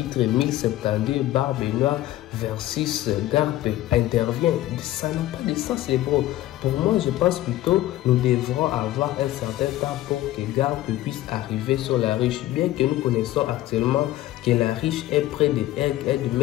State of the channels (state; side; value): quieter; right; 14.9 dB